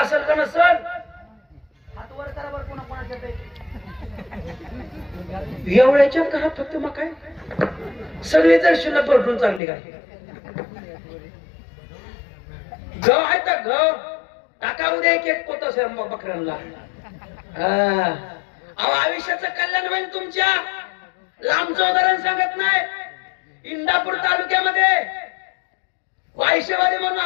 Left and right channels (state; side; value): drops out; right; at 9.6 s